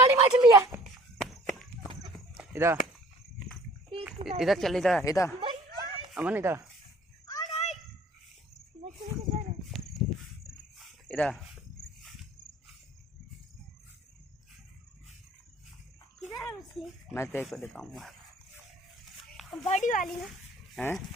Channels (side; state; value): both; normal; correlation 0.52